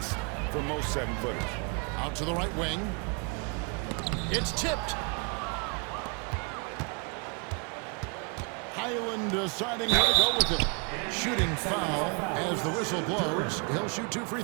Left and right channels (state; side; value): quieter; left; 34.4 dB